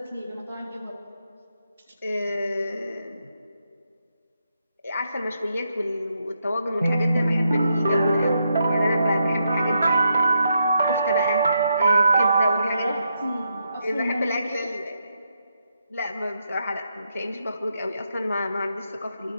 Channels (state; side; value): inverted; both; correlation -0.81